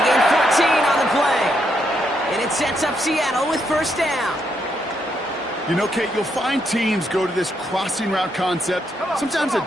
gain 14 on the play. And it sets up Seattle with 1st down. You know, Kate, you'll find teams go to this crossing route concept sometimes a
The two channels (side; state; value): both; normal; correlation 0.78